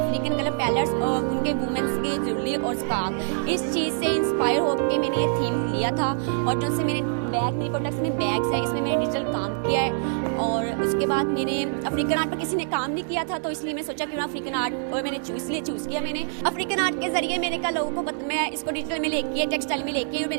कलर पैलेट्स और उनके वुमेंस की ज्वेलरी और स्कार्फ, इस चीज़ से इंस्पायर होकर मैंने ये थीम लिया था। और जो से मेरे मेरे प्रोडक्ट्स में बैग्स है, इसमें मैंने डिजिटल काम किया है। और उसके बाद मैंने अफ्रीकन आर्ट पर किसी ने काम नहीं किया था तो इसलिए मैं सोचा क्यों ना अफ्रीकन आर्ट, और मैंने चूज़ किया। मैंने अफ्रीकन आर्ट के ज़रिए मैंने कहा लोगों को मैं इसको डिजिटल में लेके टेक्सटाइल में लेके, और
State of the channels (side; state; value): left; silent; digital silence